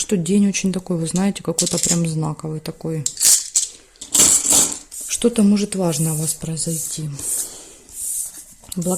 день очень такой, вы знаете, какой-то прям знаковый такой. Что-то может важное у вас произойти.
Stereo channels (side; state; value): both; identical; correlation 1.00